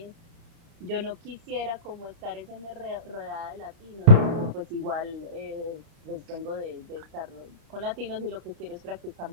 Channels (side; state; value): left; late; 30 ms